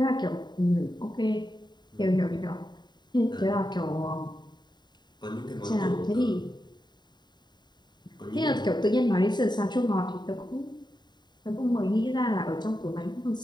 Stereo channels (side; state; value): right; late; 0.21 ms